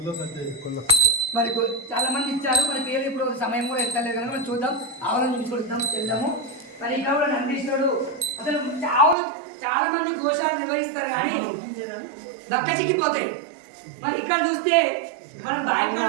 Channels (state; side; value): drops out; left; at 9.2 s